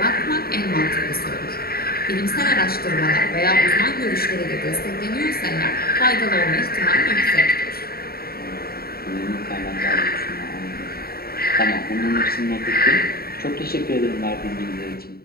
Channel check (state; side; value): late; right; 0.44 ms